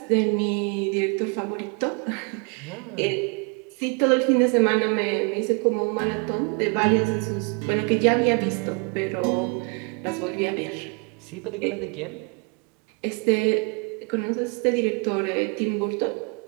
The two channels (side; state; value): left; quieter; 34.5 dB